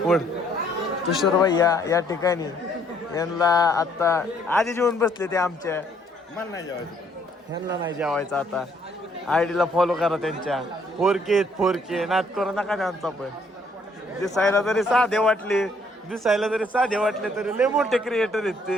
तुषार भैया या ठिकाणी. यांना आता आधी जेवून बसले ते आमच्या. ह्यांना नाही जेवायचं आता. आयडीला फॉलो करा त्यांच्या. 4K नाद करू नका त्यांचा. पण दिसायला जरी साधे वाटले तरी लय मोठे क्रिएटर आहेत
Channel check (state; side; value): normal; both; correlation 0.66